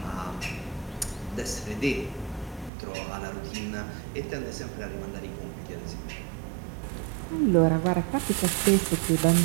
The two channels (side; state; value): left; drops out; at 2.7 s